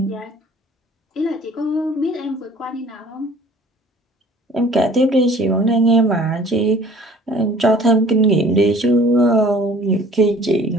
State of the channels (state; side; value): normal; both; correlation 0.51